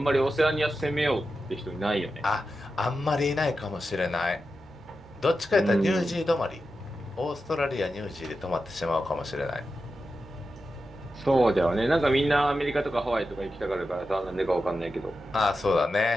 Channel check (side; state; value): both; normal; correlation 0.91